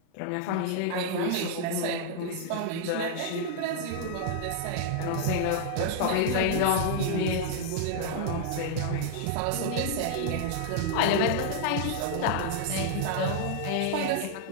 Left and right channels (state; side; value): different; both; correlation -0.01